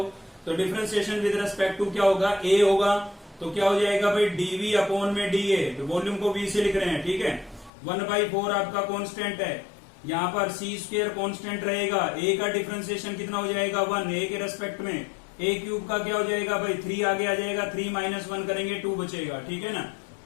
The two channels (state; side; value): drops out; right; at 7.7 s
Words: डिफरेंशिएशन विद रेस्पेक्ट टू क्या होगा A होगा, तो क्या हो जाएगा भाई dV अपॉन में dA, तो वॉल्यूम को V से लिख रहे हैं, ठीक है। 1/4 आपका कांस्टेंट है, यहाँ पर C स्क्वायर कांस्टेंट रहेगा, A का डिफरेंशिएशन कितना हो जाएगा 1, A के रेस्पेक्ट में A क्यूब का क्या हो जाएगा भाई 3 आगे आ जाएगा, 3 माइनस 1 करेंगे 2 बचेगा, ठीक है ना।